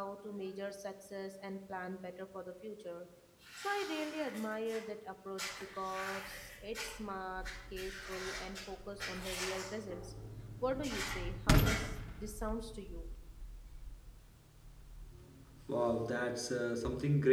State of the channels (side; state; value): both; identical; correlation 1.00